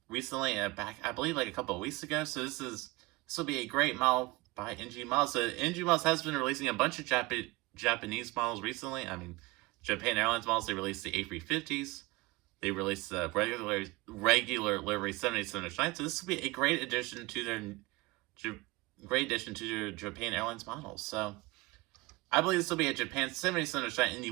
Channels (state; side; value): quieter; left; 22.6 dB